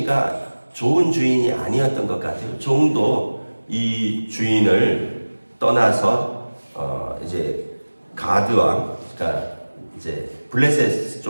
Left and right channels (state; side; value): inverted; both; correlation -1.00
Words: 좋은 주인이 아니었던 것 같아요. 종도 이 주인을 떠나서 이제 가드 왕, 그러니까 이제 블레셋